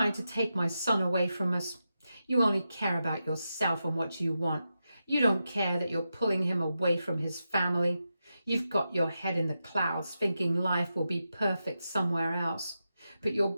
to take my son away from us. You only care about yourself and what you want. You don't care that you're pulling him away from his family. You've got your head in the clouds thinking life will be perfect somewhere else, but you're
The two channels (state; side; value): inverted; both; correlation -0.89